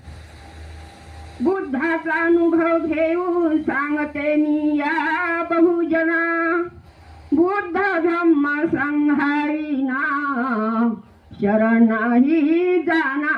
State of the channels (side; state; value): both; identical; correlation 1.00